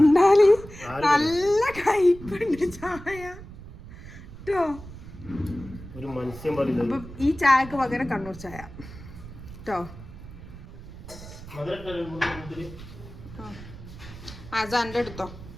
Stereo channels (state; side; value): noise; right; rumble, 15 dB below the sound